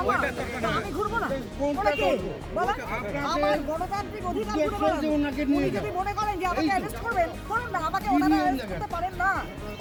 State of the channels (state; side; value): identical; both; correlation 1.00